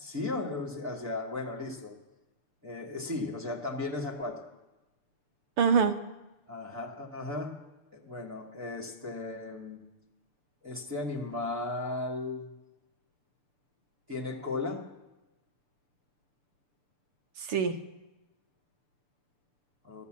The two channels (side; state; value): left; late; 6.8 ms